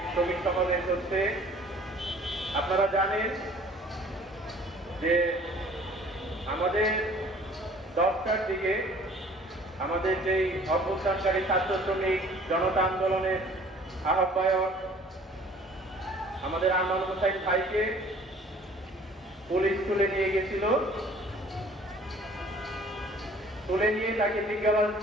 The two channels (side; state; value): both; normal; correlation 0.52